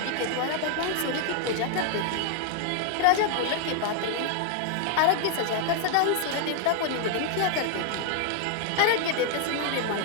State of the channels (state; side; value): different; both; correlation 0.00